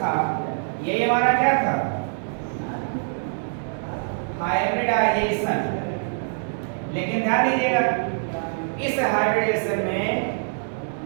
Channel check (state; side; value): silent; left; digital silence